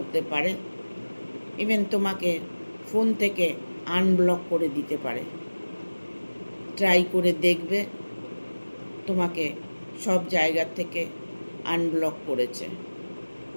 পারে, ইভেন তোমাকে ফোন থেকে আনব্লক করে দিতে পারে। ট্রাই করে দেখবে, তোমাকে সব জায়গা থেকে আনব্লক করেছে।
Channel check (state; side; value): inverted; both; correlation -1.00